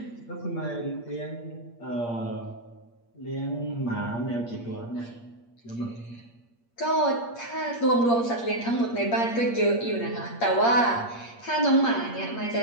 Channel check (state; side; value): late; right; 8.6 ms